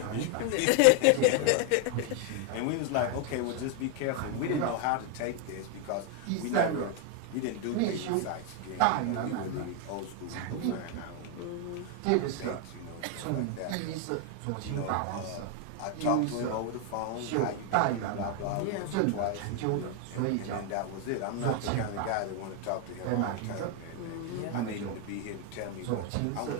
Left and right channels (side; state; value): both; different; correlation 0.01